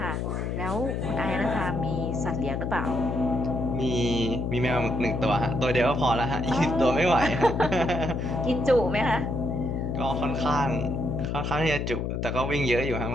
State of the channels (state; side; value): noise; left; hum, 2 dB below the sound